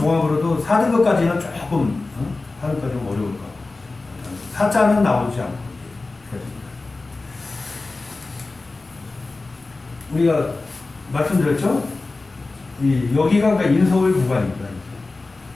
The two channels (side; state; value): right; quieter; 3.5 dB